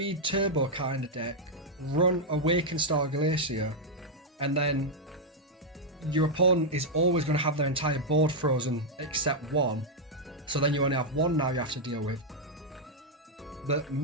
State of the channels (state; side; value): normal; both; correlation -0.02